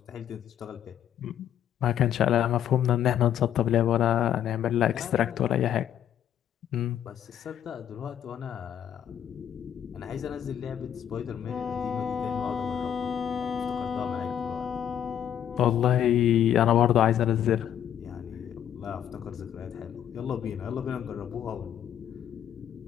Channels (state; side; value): quieter; right; 10.0 dB